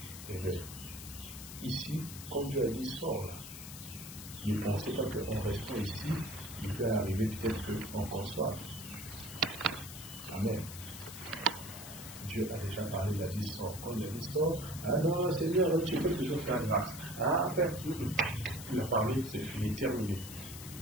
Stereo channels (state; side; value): noise; left; hiss, 12 dB below the sound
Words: et bien, ici, comme Dieu a dit, sors là. Ne pensez pas qu'en restant ici, il peut arriver peut-être qu'on conçoive. Amen. Dieu a déjà parlé, il a dit sors. Quand il a dit sors, ah non, Seigneur, tu peux toujours faire grâce. Ah, après, il a parlé, c'est fini, terminé.